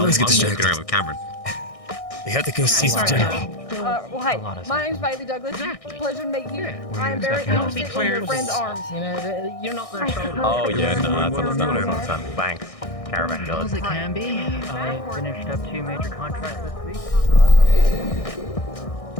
always get I'm walking distracted. around with Cameron. We have to go see the general. Well, hey, my name's Bailey Douglas. Pleasure to meet you. I am very interested in your friend's arms. You know, you're not their shoulder. Oh yeah, no, that's understandable. Thanks. Caravan goes. It can be. I finished up 2 major contracts this week.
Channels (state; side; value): late; right; 1.6 ms